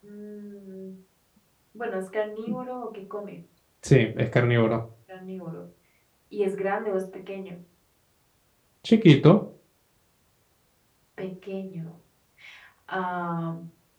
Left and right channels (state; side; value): identical; both; correlation 1.00